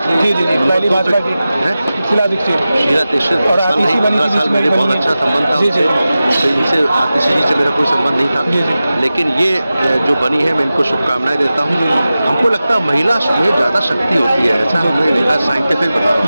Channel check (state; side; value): inverted; both; correlation -0.95